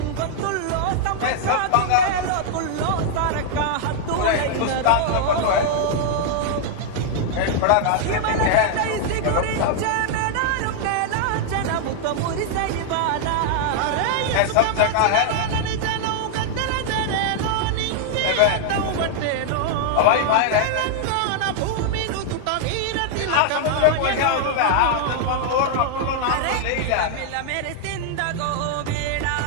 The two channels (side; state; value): both; different; correlation 0.00